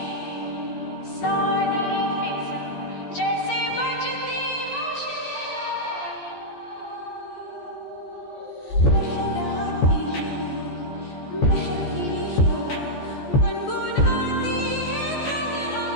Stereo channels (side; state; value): right; late; 14 ms